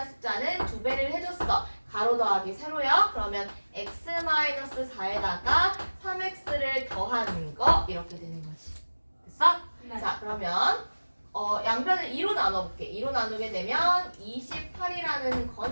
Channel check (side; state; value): both; inverted; correlation -1.00